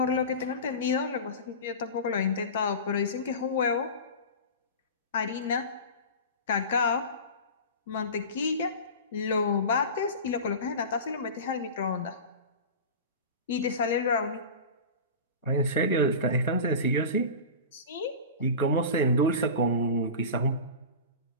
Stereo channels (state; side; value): inverted; both; correlation -0.30